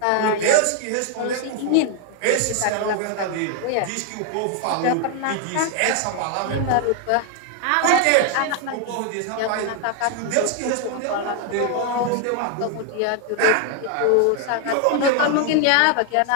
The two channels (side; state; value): both; different; correlation 0.00